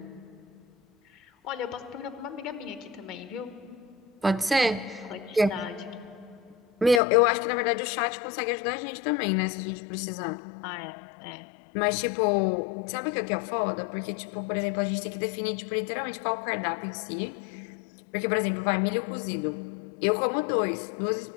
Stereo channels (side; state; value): right; drops out; at 7.0 s